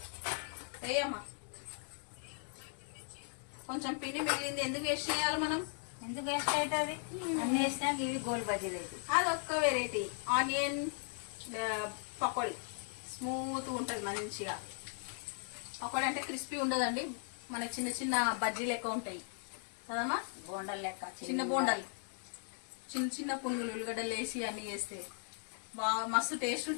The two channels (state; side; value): silent; right; 53 dB below the other